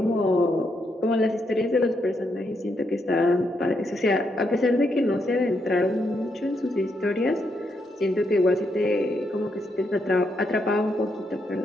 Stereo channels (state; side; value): normal; both; correlation 0.79